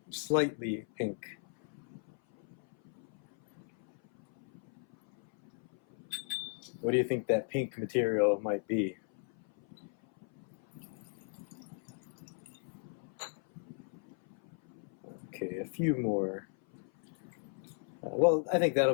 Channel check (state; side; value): silent; right; 54 dB below the other